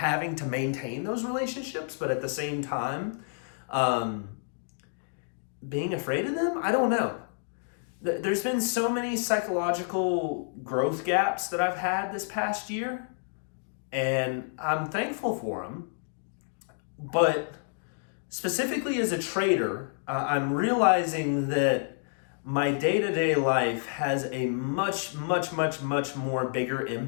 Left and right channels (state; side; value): silent; right; digital silence